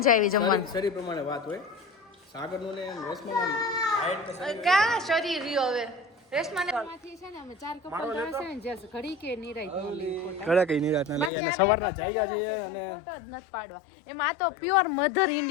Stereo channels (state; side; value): drops out; right; at 11.3 s